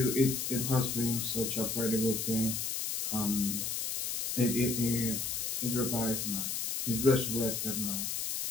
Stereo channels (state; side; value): noise; left; hiss, 2 dB below the sound